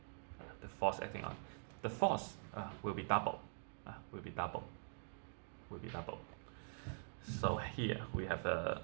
The force will be double. So here we have a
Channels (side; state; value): left; silent; digital silence